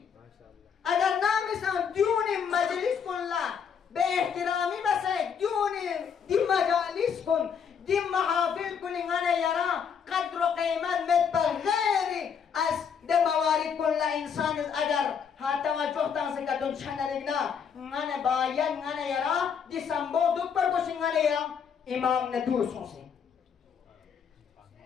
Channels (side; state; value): right; quieter; 7.0 dB